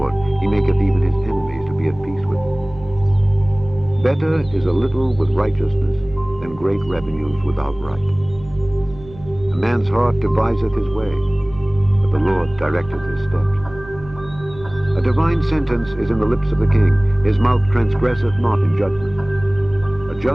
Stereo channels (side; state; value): right; noise; hum, 19 dB below the sound